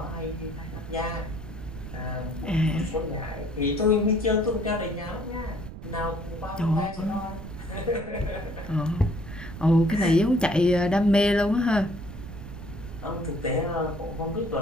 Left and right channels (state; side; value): noise; right; rumble, 11 dB below the sound